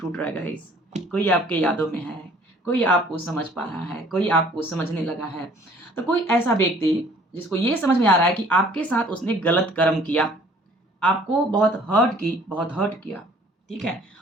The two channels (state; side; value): normal; both; correlation 0.55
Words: रहा है गाइस, कोई आपके यादों में है, कोई आपको समझ पा रहा है, कोई आपको समझने लगा है। तो कोई ऐसा व्यक्ति जिसको ये समझ में आ रहा है कि आपके साथ उसने गलत कर्म किया, आपको बहुत हर्ट किया, ठीक है?